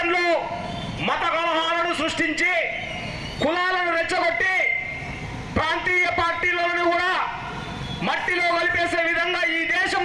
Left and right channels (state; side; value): identical; both; correlation 1.00